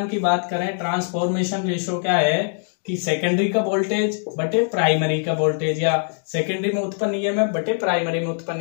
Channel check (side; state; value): right; silent; digital silence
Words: की बात करें, ट्रांसफॉर्मेशन रेशियो क्या है कि सेकेंडरी का वोल्टेज बटे प्राइमरी का वोल्टेज, या सेकेंडरी में उत्पन्न ईएमएफ बटे प्राइमरी में उत्पन्न